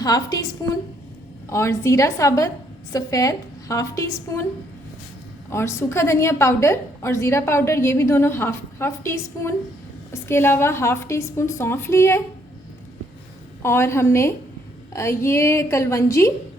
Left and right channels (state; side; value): normal; both; correlation 0.69